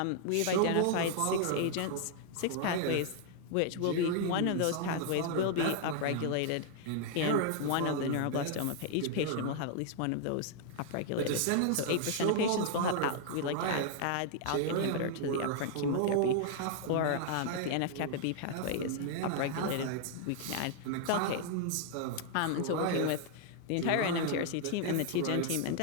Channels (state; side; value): different; both; correlation 0.00